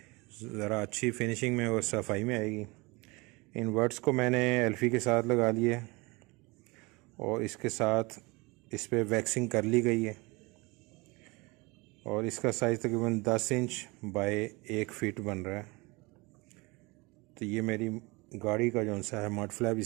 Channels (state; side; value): quieter; left; 25.2 dB